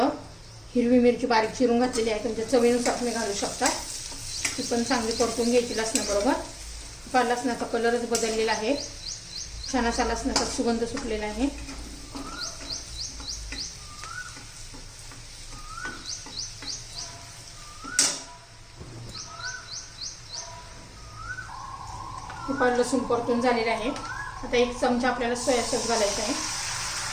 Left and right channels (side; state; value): both; identical; correlation 1.00